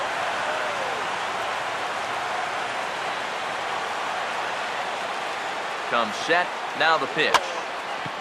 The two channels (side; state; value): both; identical; correlation 1.00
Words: Comes set. Now the pitch.